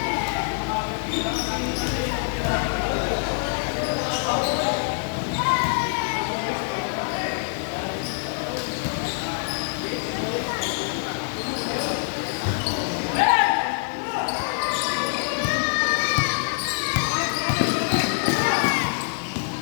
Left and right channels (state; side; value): silent; right; digital silence